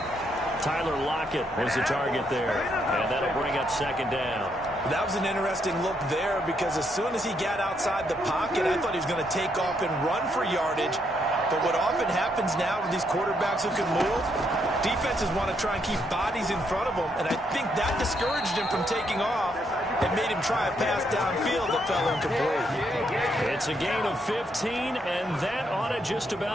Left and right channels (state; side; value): normal; both; correlation 0.75